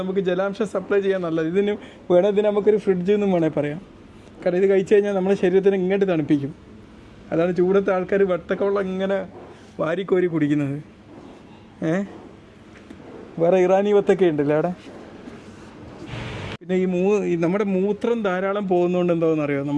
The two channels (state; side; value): identical; both; correlation 1.00